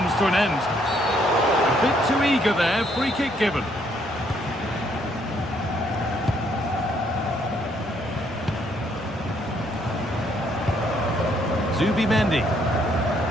to an end. A bit too eager there. Free kick given. Zubimendi.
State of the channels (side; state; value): both; normal; correlation 0.69